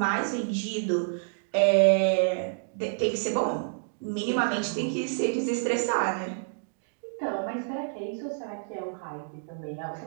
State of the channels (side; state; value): left; silent; digital silence